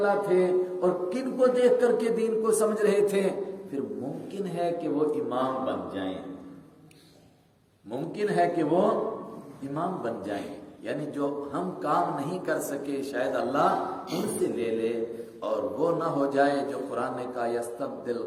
تھے اور کن کو دیکھ کر کے دین کو سمجھ رہے تھے۔ پھر ممکن ہے کہ وہ امام بن جائیں، ممکن ہے کہ وہ امام بن جائیں، یعنی جو ہم کام نہیں کر سکے شاید اللہ ان سے لے لے، اور وہ نہ ہو جائے جو قرآن نے کہا یستبدل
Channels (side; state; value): both; identical; correlation 1.00